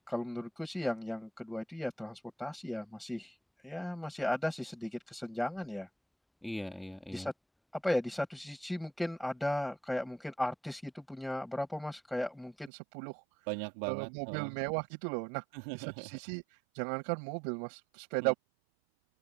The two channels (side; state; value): left; drops out; at 12.7 s